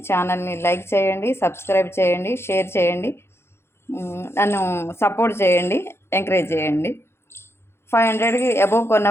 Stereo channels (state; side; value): late; right; 0.12 ms